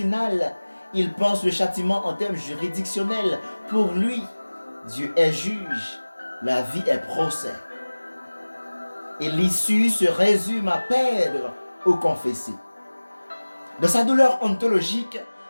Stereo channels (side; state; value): both; inverted; correlation -1.00